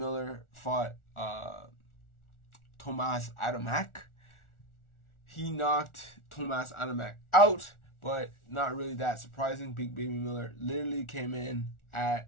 fought Tomas Adamek. He knocked Tomas Adamek out, but not really that surprising. Big Baby Miller literally came in at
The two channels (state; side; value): late; right; 1.4 ms